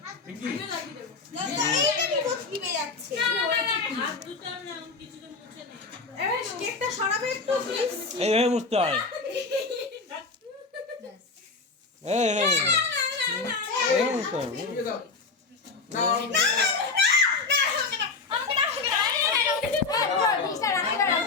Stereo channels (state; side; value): quieter; right; 4.2 dB